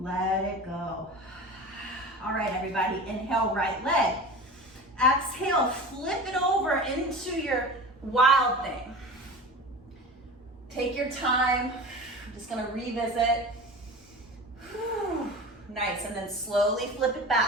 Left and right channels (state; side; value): normal; both; correlation 0.34